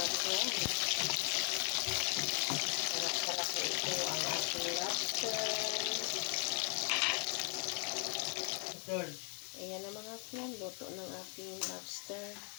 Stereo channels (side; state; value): right; quieter; 37.2 dB